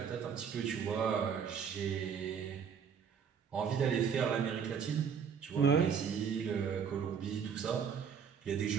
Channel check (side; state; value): left; quieter; 7.0 dB